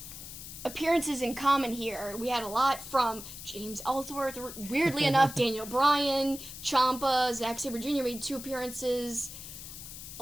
appearances in common here. We had a lot from James Ellsworth, weirdly enough, Daniel Bryan, Ciampa, Zack Sabre Jr. made 2 appearances. A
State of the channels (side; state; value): left; noise; hiss, 12 dB below the sound